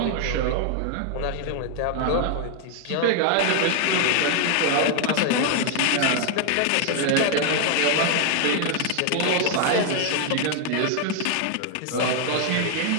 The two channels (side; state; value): both; different; correlation 0.00